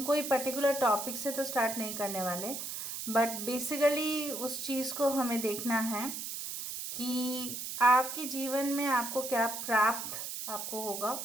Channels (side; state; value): right; noise; hiss, 6 dB below the sound